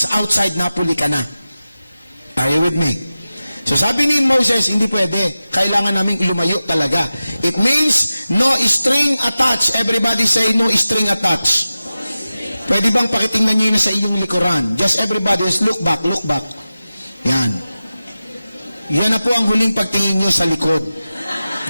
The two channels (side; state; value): both; inverted; correlation -0.95